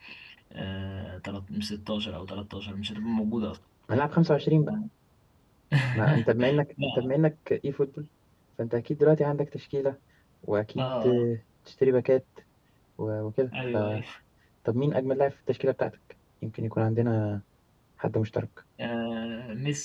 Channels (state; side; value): identical; both; correlation 1.00